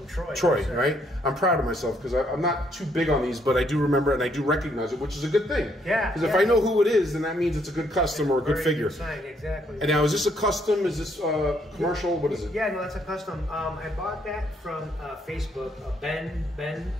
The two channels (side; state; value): both; normal; correlation 0.71